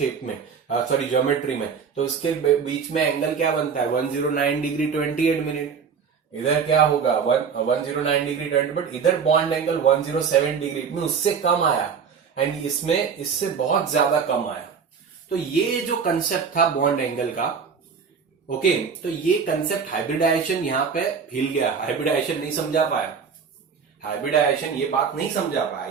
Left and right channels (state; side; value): quieter; left; 6.3 dB